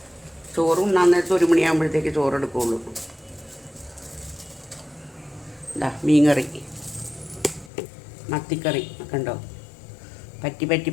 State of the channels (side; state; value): right; drops out; at 7.7 s